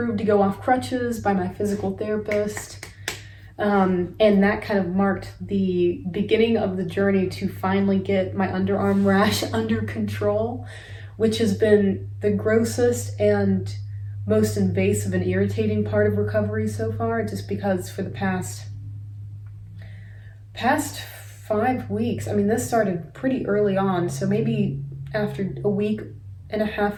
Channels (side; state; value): both; identical; correlation 1.00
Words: to go off crutches by my physical therapist, and that kind of marked the beginning of the journey to finally get my underarm rash under control, which has been the grossest and most invasive and irritating part of recovery so far, just because for the past 5 weeks, I mean, this started pretty early on, so maybe after a week and a